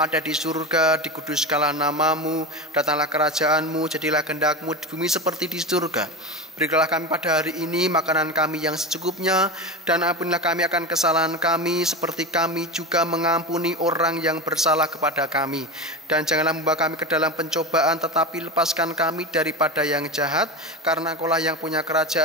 ada di surga, dikuduskanlah nama-Mu, datanglah kerajaan-Mu, jadilah kehendak-Mu di bumi seperti di surga. Berikanlah kami pada hari ini makanan kami yang secukupnya, dan ampunilah kami akan kesalahan kami, seperti kami juga mengampuni orang yang bersalah kepada kami. Dan janganlah membawa kami ke dalam pencobaan, tetapi lepaskan kami daripada yang jahat, karena Engkau-lah yang punya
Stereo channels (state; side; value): normal; both; correlation 0.23